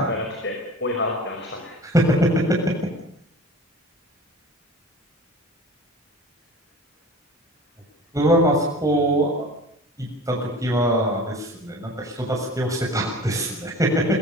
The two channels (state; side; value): normal; both; correlation 0.40